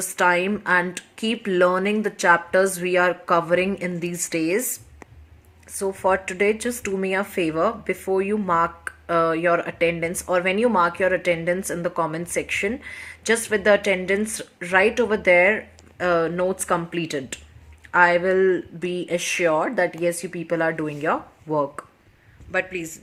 time and keep learning the chapters we are covering in these days. So for today, just do me a favor. Before you mark your attendance, or when you mark your attendance in the comment section, just with the attendance right over there, notes completed, I will be assured that yes, you people are doing your work. But please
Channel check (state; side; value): identical; both; correlation 1.00